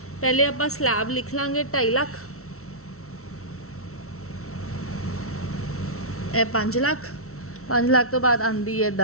पहले आप स्लैब लिख लांगे 2.5 लाख, 5 लाख, 5 लाख तो बाद आती है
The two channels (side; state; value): right; late; 0.63 ms